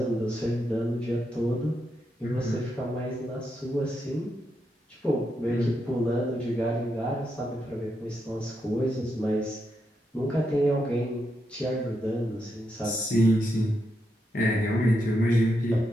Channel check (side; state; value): both; normal; correlation 0.83